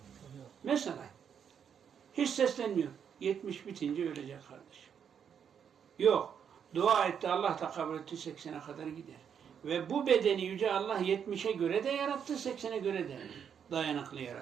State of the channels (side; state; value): left; quieter; 7.8 dB